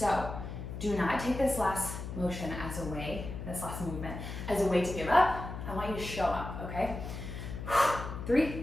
do not take this last motion as a way, this last movement, as a way to give up. I want you to show up, okay? 3,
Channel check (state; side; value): noise; left; hum, 7 dB below the sound